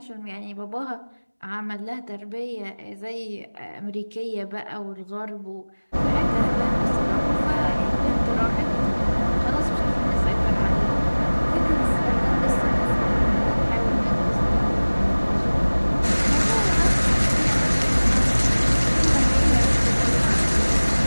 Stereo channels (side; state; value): both; inverted; correlation -1.00